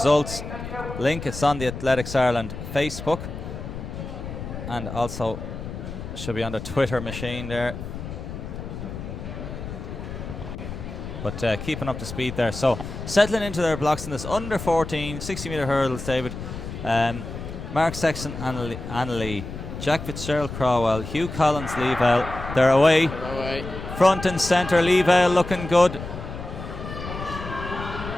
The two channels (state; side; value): noise; left; rumble, 9 dB below the sound